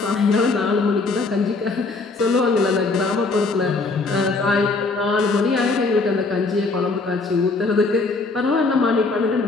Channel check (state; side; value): quieter; right; 3.7 dB